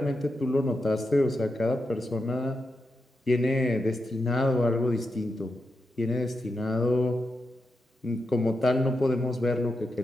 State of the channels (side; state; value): both; normal; correlation 0.87